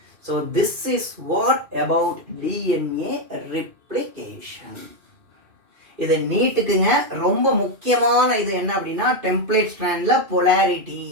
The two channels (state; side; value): late; left; 2.5 ms